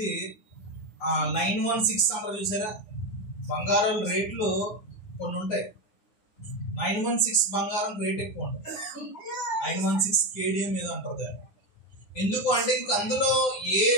916 అంటారు చూసారా? బంగారం రేట్లు కొన్ని ఉంటాయి. 916 బంగారం రేట్ ఎక్కువ ఉంటుంది. 916 కేడిఎం ఏదో అంటారు దాన్ని. ఎందుకు అంటే ఇంక అందులో ఏ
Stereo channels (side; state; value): right; late; 9.4 ms